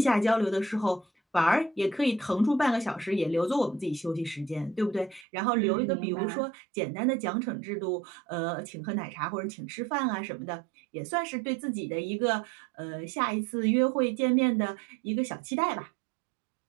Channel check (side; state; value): left; drops out; at 5.2 s